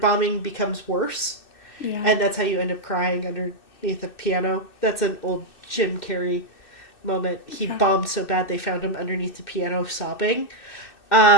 becomes worse. Yeah. And that's how you end up crying underneath a piano. That's an old Jim Carrey moment. He bombed so bad they found him underneath the piano sobbing.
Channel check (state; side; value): late; right; 2.6 ms